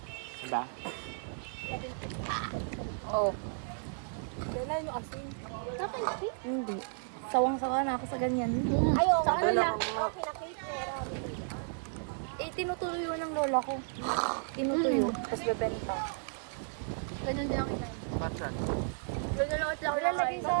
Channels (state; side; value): silent; left; digital silence